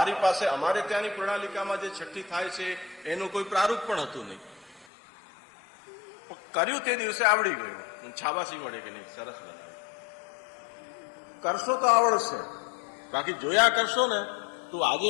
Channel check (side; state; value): right; drops out; at 4.9 s